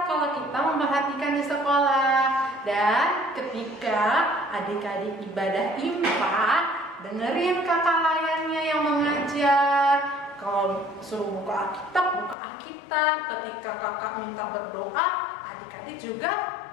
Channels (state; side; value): drops out; right; at 12.4 s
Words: kalau kita memperhatikan di sekolah. Dan ketika adik-adik ibadah IMPA, dengerin kakak layannya yang mengajar. Kalau suruh buka Alkitab. Ketika kakak minta berdoa, adik-adik juga